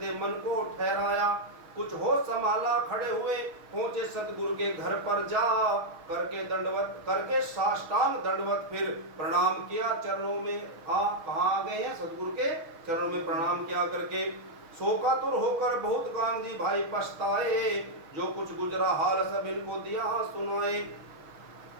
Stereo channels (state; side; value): late; left; 6.5 ms